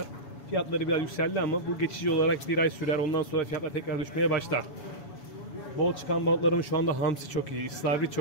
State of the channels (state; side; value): late; right; 7.0 ms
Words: Fiyatları biraz yükseldi ama bu geçici olarak bir ay sürer. Ondan sonra fiyatlar tekrar düşmeye başlar. Bol çıkan balıklarımız şu anda hamsi çok iyi, istavrit